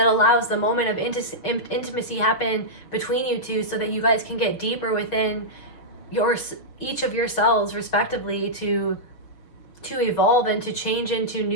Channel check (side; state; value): right; late; 6.2 ms